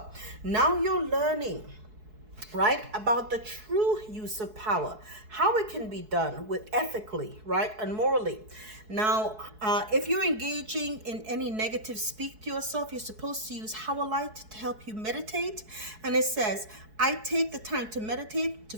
Now you're learning, right, about the true use of power, how it can be done with ethically, right, and morally. Now, if you're engaging in any negative speak to yourself, you're supposed to use Howlite to help you meditate. And it says, I take the time to meditate to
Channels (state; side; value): late; left; 4.7 ms